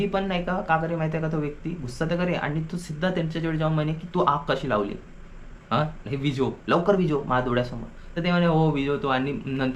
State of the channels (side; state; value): both; identical; correlation 1.00